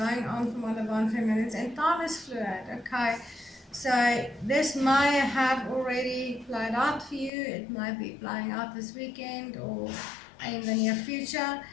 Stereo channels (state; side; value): drops out; right; at 7.3 s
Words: on for my divine feminines. And time is fluid, okay? So this may have already played out for you. It might be playing out this weekend or in the near future.